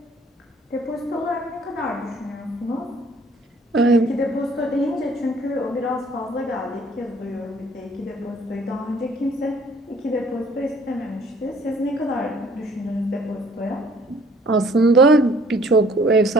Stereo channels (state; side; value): normal; both; correlation 0.57